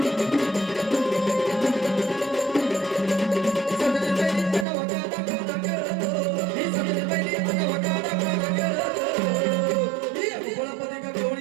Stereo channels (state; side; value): drops out; left; at 4.7 s